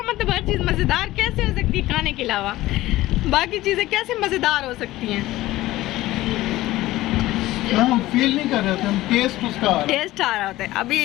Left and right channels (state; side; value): quieter; right; 16.7 dB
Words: मतलब, हर चीज़ मज़ेदार कैसे हो सकती है खाने के अलावा, बाकी चीज़ें कैसे मज़ेदार हो सकती हैं। हम फील नहीं कर रहे थे, हम टेस्ट उसका आ रहा है। टेस्ट आ रहा होता है। अभी